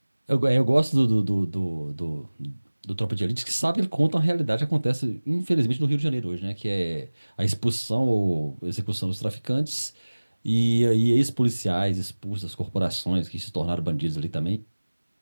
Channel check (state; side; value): inverted; both; correlation -1.00